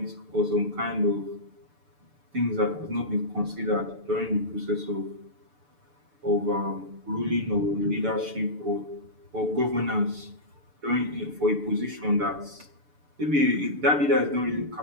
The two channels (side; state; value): left; late; 6.9 ms